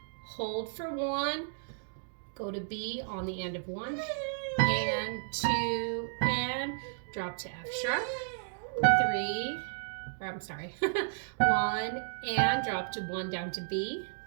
hold for 1. Go to B on the end of 1 and 2 and drop to F sharp. 3, or I'm sorry, 1 and drop to 1 down to B.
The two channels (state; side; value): silent; left; digital silence